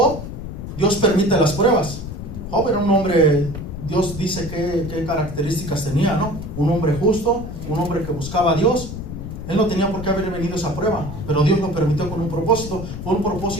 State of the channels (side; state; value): left; noise; rumble, 8 dB below the sound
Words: Dios permite las pruebas. Job era un hombre, Dios dice qué características tenía, ¿no? Un hombre justo, un hombre que buscaba a Dios. Él no tenía por qué haber venido esa prueba, pero Dios lo permitió con un propósito. Fue un